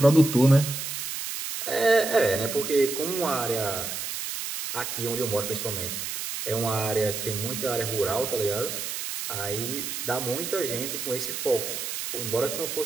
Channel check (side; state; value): right; noise; hiss, 5 dB below the sound